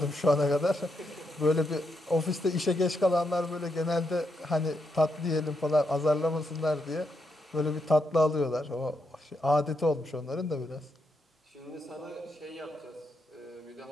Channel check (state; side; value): normal; both; correlation 0.81